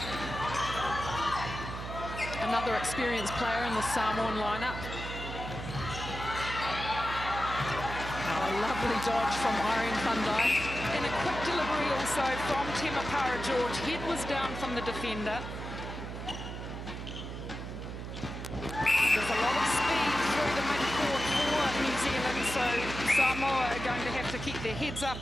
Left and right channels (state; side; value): noise; right; hum, 8 dB below the sound